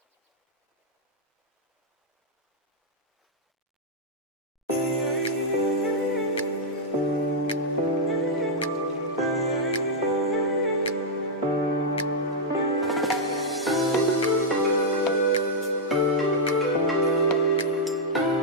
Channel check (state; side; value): normal; both; correlation -0.05